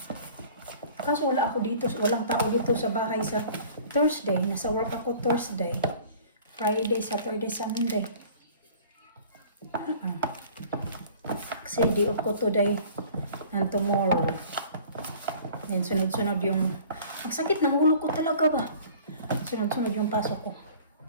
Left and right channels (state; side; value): inverted; both; correlation -0.47